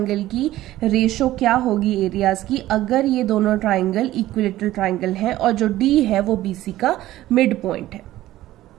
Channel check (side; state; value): left; quieter; 15.2 dB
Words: की रेशियो क्या होगी एरियाज की, अगर ये दोनों ट्राइंगल इक्विलेटरल ट्राइंगल हैं और जो D है वो BC का मिड पॉइंट है।